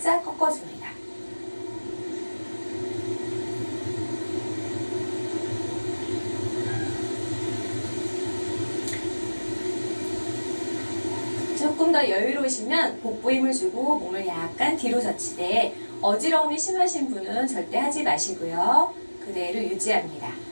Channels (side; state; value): both; inverted; correlation -1.00